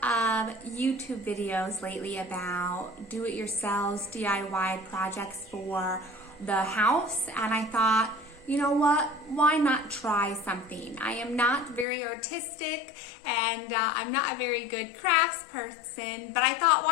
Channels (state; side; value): drops out; right; at 11.9 s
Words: of YouTube videos lately about do-it-yourselves DIY projects for the house, and I thought, you know what, why not try something? I am not very artistic and I'm not a very good crafts person, but I thought,